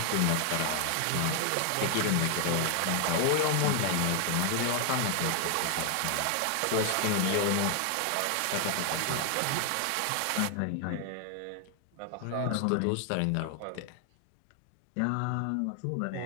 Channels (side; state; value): both; different; correlation 0.00